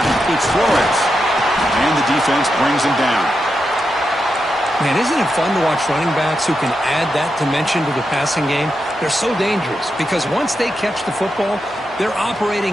It's Flores. And the defense brings him down. Man, isn't it fun to watch running backs who can add that dimension to the passing game? They're so dangerous because once they catch the football, they're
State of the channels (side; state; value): both; normal; correlation 0.87